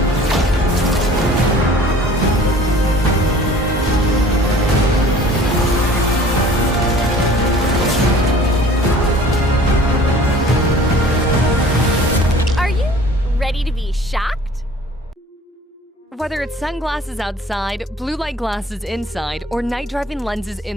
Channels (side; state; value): both; normal; correlation 0.49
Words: Ready to be shocked? Whether it's sunglasses outside, blue light glasses inside, or night driving lenses